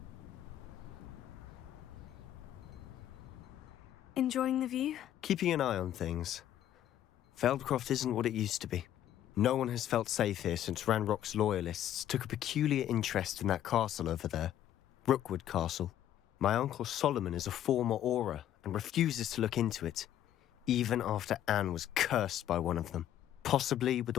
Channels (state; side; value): quieter; right; 11.6 dB